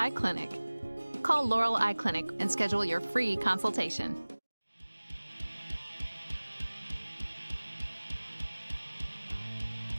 Clinic. Call Laurel Eye Clinic and schedule your free consultation.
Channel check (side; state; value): both; inverted; correlation -1.00